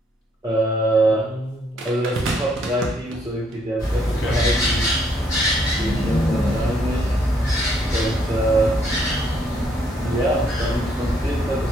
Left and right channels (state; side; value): normal; both; correlation 0.70